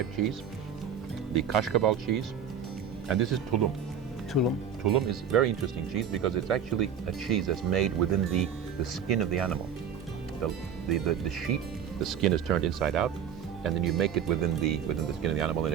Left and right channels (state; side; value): quieter; left; 7.8 dB